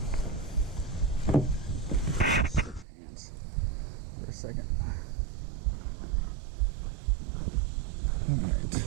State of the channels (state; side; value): drops out; left; at 2.9 s